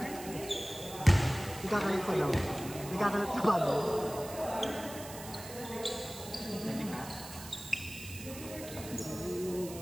Nagkakalat pa daw. Nagkakalat pa ba?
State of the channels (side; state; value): right; noise; hiss, 13 dB below the sound